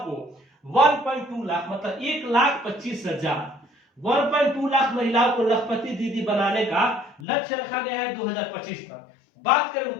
1.2 लाख मतलब 1,25,000 1.2 लाख महिलाओं को लखपति दीदी बनाने का लक्ष्य रखा गया है 2025 तक। बात करें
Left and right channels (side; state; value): right; drops out; at 7.2 s